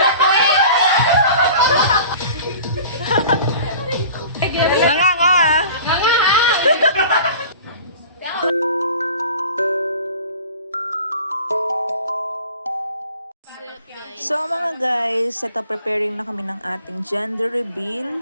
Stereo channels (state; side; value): inverted; both; correlation -0.43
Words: Nanganga ah. So mga guys, ito preparing na kami ng ating gender